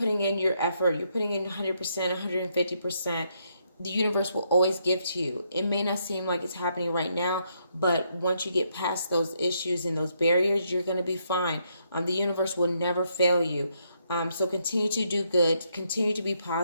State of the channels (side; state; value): both; inverted; correlation -0.75